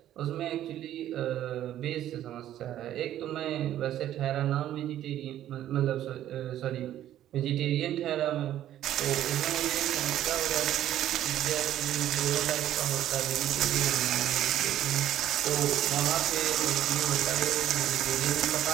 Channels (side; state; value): left; quieter; 12.2 dB